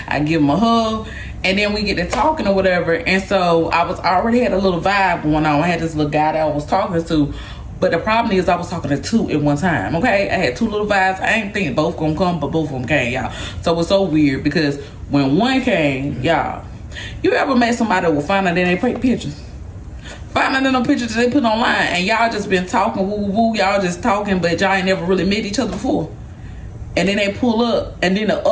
I give them a hug. And then we get to talking or whatever. And so I already had a little vibe going on. I had this little guy that I was talking to. But the problem is I was talking to two at one time, okay? I had two little vibes. I ain't thinking both gonna come, but both of them came, y'all. So it was so weird because when one came, y'all, you ever met somebody that will find out that they take pictures? Find out in them pictures that they put online and y'all just been talking, woo, woo, woo, y'all just talking, but y'all ain't never really met each other before. And then they pull up, and then the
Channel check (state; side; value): identical; both; correlation 1.00